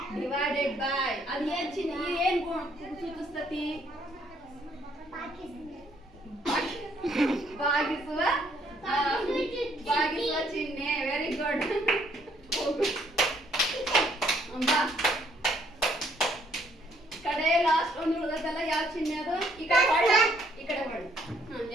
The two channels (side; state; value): both; normal; correlation 0.67